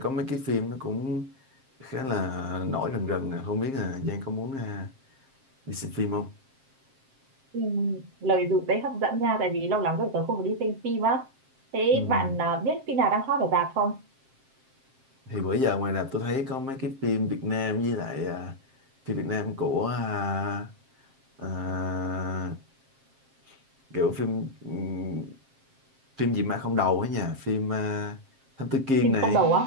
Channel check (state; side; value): late; left; 7.5 ms